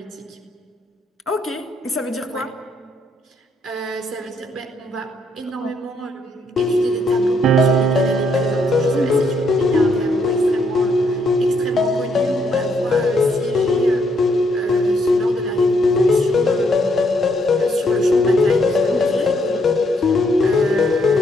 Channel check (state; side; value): normal; both; correlation 0.73